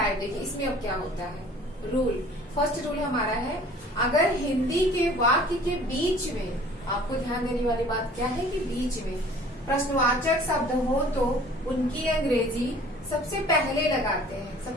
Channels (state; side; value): normal; both; correlation 0.50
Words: देखिए इसमें अब क्या होता है। रूल, फर्स्ट रूल हमारा है, अगर हिंदी के वाक्य के बीच में, आपको ध्यान देने वाली बात क्या है कि बीच में प्रश्नवाचक शब्द हो तो उनकी अंग्रेजी सबसे पहले लगाते हैं।